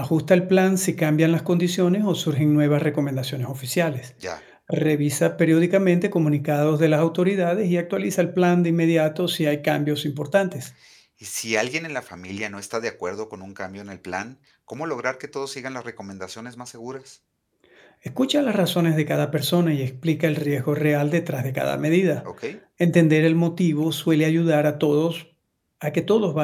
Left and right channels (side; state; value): both; identical; correlation 1.00